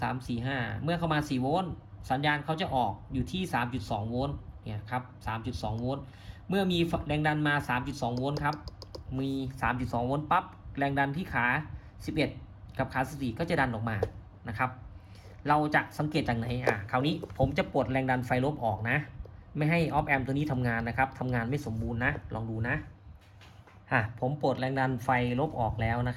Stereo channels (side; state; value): both; identical; correlation 1.00